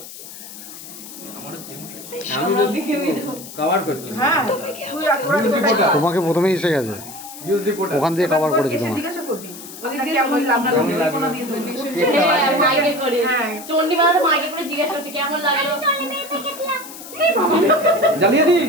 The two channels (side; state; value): left; noise; hiss, 14 dB below the sound